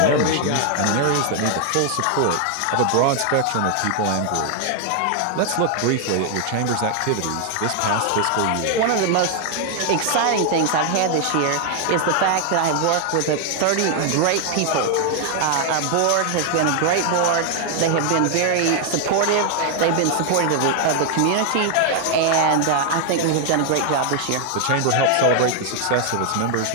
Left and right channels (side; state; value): both; different; correlation 0.00